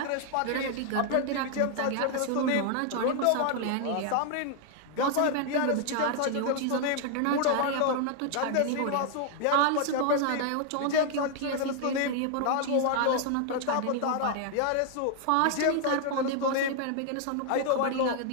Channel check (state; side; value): different; both; correlation 0.00